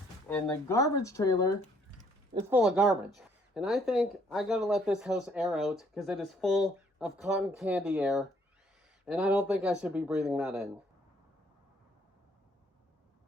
and the garbage trailer is full of garbage. And I think I gotta let this house air out because it is full of cotton candy air, and I don't think I should be breathing that in.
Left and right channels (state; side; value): normal; both; correlation 0.65